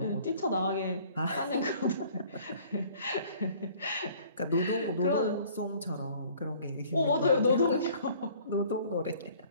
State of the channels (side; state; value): both; inverted; correlation -0.54